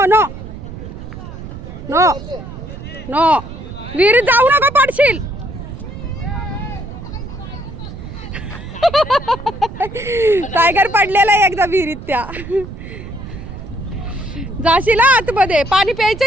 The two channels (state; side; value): noise; right; rumble, 11 dB below the sound